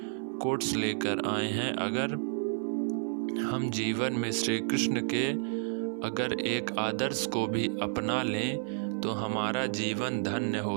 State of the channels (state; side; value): silent; left; 57 dB below the other